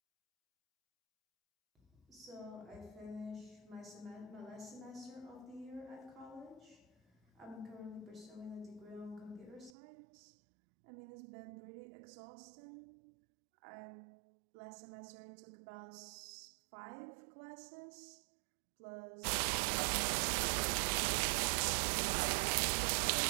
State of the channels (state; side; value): drops out; left; at 9.7 s